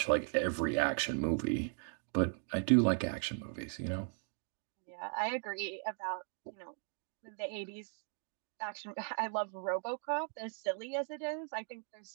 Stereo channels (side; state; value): left; silent; 53 dB below the other